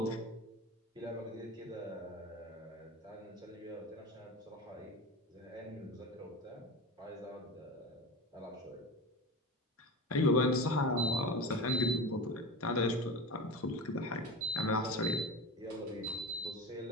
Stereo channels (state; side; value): normal; both; correlation 0.27